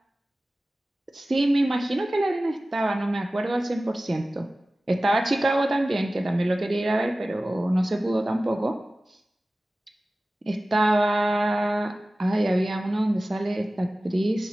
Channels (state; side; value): normal; both; correlation 0.96